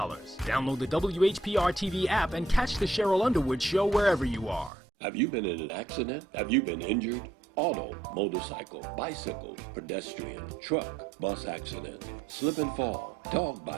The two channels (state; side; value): drops out; left; at 4.7 s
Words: the WHPR TV app and catch the Cheryl Underwood show wherever you are. Have you been in an accident? Have you been injured? Auto, motorcycle, bicycle, pedestrian, truck, bus accident, slip and fall, dog